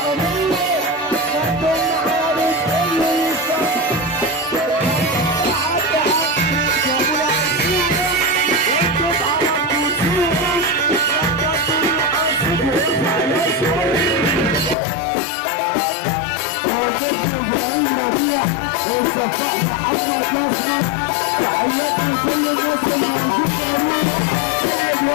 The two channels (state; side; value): drops out; right; at 14.8 s